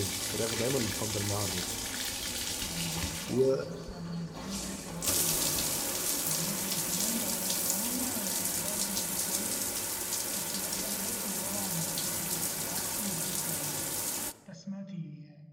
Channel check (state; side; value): identical; both; correlation 1.00